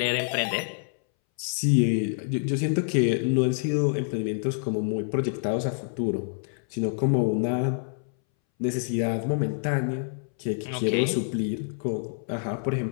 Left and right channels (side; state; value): right; silent; 60 dB below the other